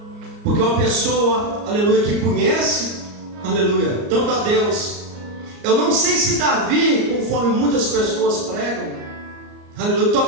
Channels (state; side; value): late; left; 34 ms